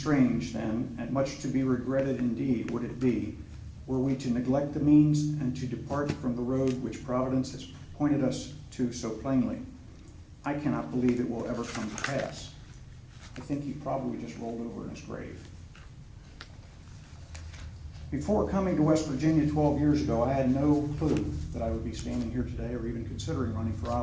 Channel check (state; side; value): identical; both; correlation 1.00